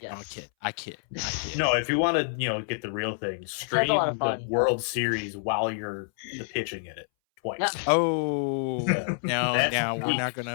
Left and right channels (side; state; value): right; silent; 60 dB below the other